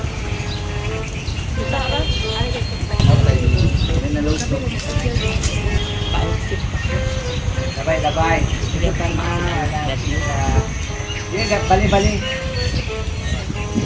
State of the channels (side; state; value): both; identical; correlation 1.00